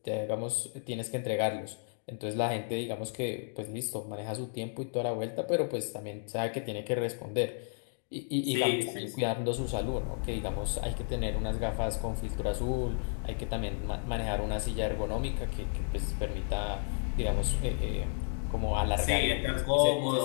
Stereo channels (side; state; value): right; silent; digital silence